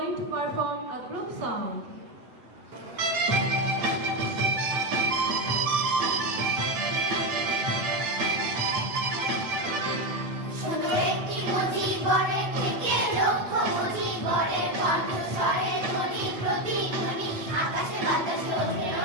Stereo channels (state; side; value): late; left; 7.8 ms